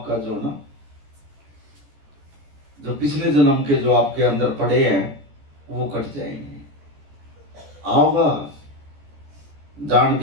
जो ना, जो पिछले जन्म के जो आपके अंदर पड़े हैं वो कट जाएंगे। आओगा जान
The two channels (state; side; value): late; left; 14 ms